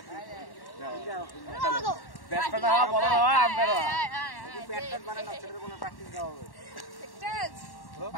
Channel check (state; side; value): late; right; 1.1 ms